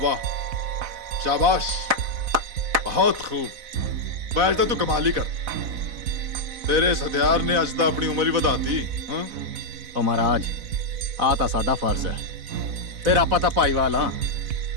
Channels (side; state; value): left; late; 4.0 ms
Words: वाह, शाबाश, बहुत खूब। बैठ तो तू कमाल ही कर, तेरे इस हथियार ने अज तो अपनी उम्र ही ਵਧਾਤੀ। हाँ ओ महाराज, आ तां साडा फर्ज है, फिर आपां तां भाईवाल हां।